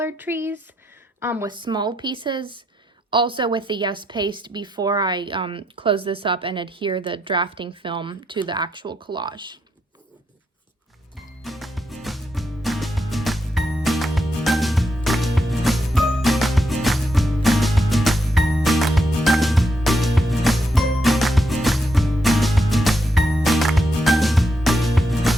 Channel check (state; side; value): normal; both; correlation 0.80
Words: trees with small pieces, also with the Yes Paste before I close this up and adhere the drafting film to the actual collage.